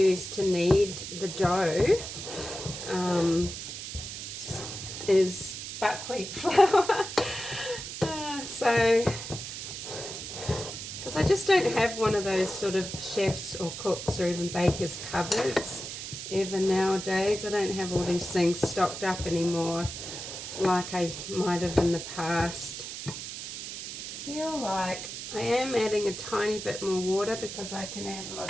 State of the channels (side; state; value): right; noise; hiss, 8 dB below the sound